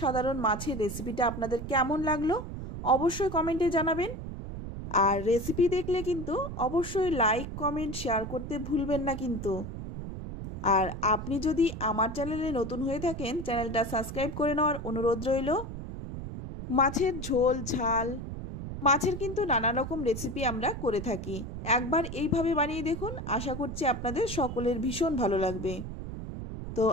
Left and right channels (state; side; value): noise; right; rumble, 8 dB below the sound